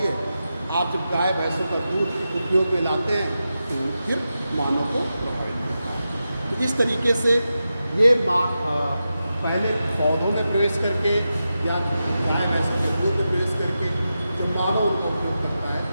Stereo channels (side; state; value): both; inverted; correlation -0.90